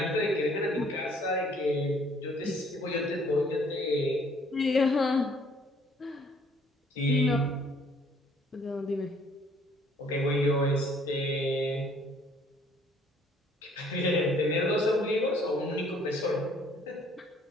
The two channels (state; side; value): normal; both; correlation 0.60